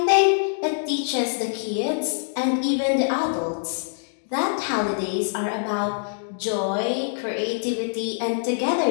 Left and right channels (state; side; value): silent; right; digital silence